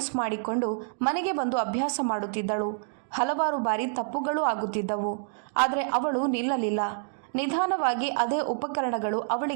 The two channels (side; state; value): left; silent; digital silence